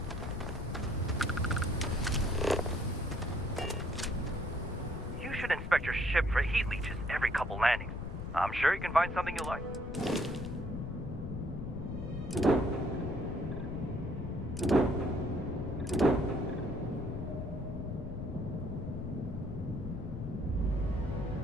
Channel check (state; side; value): noise; left; rumble, 6 dB below the sound